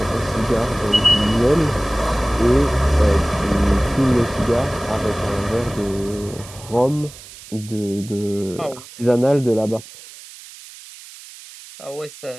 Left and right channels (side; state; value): right; noise; hiss, 18 dB below the sound